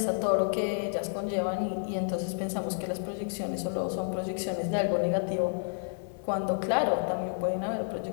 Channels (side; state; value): right; silent; digital silence